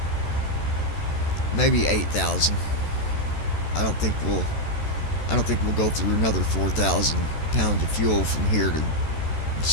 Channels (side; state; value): right; late; 13 ms